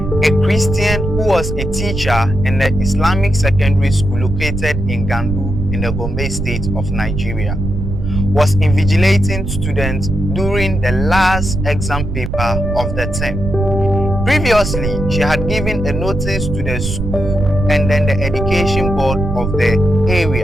a Christian who was a teacher in the Islamic secondary school located in Gandu in the Gombe state of Nigeria, was invigilating students during the last exam paper of the term. Previously, she had given a notice to the school and then the education board of the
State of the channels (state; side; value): noise; right; rumble, 4 dB below the sound